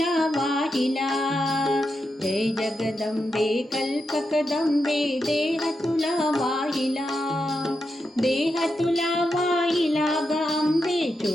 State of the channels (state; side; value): normal; both; correlation 0.86